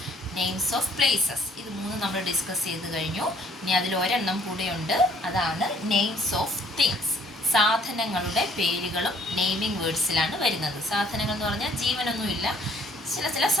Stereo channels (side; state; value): both; normal; correlation 0.61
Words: names of places, ഇത് 3 നമ്മൾ ഡിസ്കസ് ചെയ്ത് കഴിഞ്ഞു. ഇനി അതിൽ ഒരെണ്ണം കൂടെയുണ്ട്, അതാണ് നെയിംസ് ഓഫ് തിങ്സ്. സാധനങ്ങളുടെ പേരുകളും നെയിമിംഗ് വേർഡ്സിലാണ് വരുന്നത്. സാധനങ്ങൾ എന്ന് പറഞ്ഞാൽ ജീവനൊന്നുമില്ല, ചില